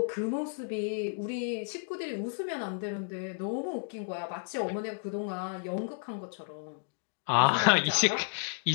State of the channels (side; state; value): right; silent; digital silence